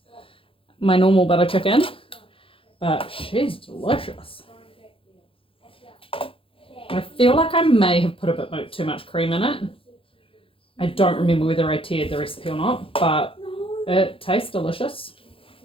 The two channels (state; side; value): late; right; 0.26 ms